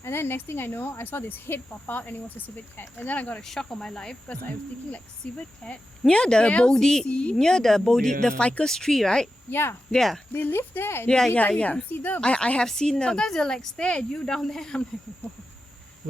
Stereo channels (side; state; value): both; normal; correlation 0.91